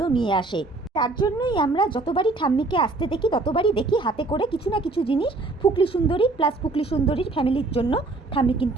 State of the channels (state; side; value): quieter; left; 3.3 dB